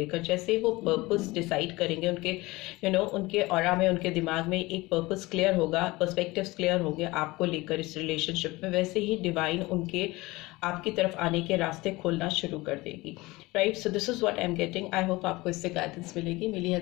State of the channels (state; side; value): quieter; right; 21.3 dB